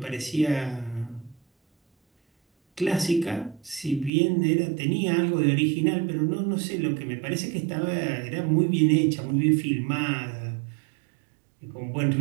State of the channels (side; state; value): left; drops out; at 4.1 s